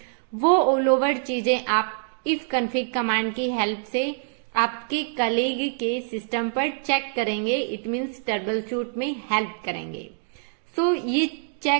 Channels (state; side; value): silent; left; digital silence